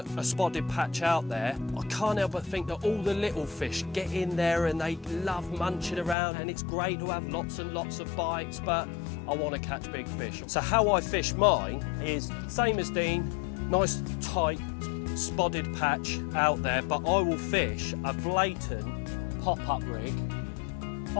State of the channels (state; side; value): drops out; right; at 6.2 s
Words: a spotted patch out there, I can't help but think that all the little fish get in there and they love munching around, and it's great to have lots and lots of bites, but I want to catch big fish. So how I fish mine is same as Dean, nice tight spotted patch out there, but I will fish a blatant pop-up rig